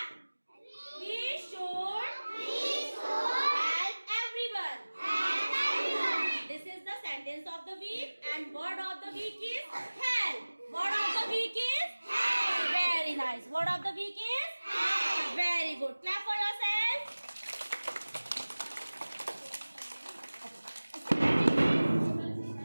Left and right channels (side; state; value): both; inverted; correlation -1.00